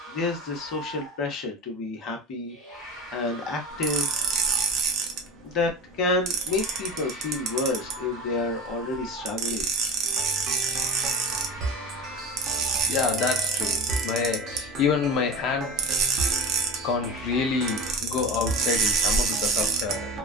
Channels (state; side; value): normal; both; correlation 0.30